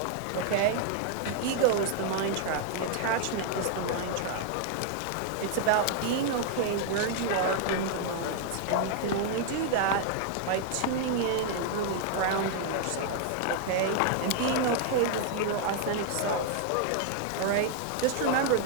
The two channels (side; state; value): both; different; correlation 0.00